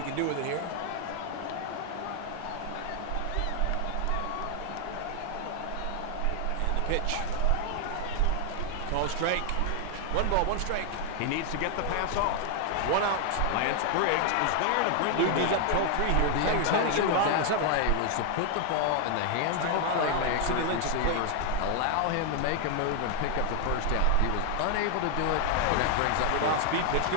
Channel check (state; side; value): different; both; correlation 0.00